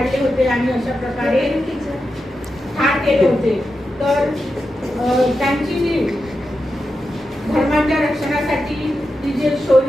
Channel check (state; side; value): normal; both; correlation 0.89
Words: होते आणि अशा प्रकारे ठार केले होते. तर त्यांची जी धर्माच्या रक्षणासाठी ती जे